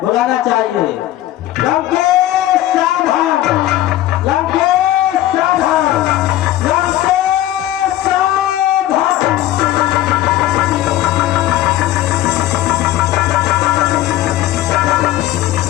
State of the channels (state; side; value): quieter; right; 14.0 dB